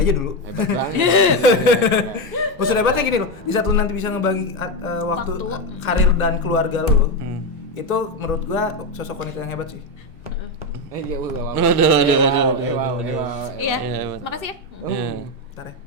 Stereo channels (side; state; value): both; normal; correlation 0.10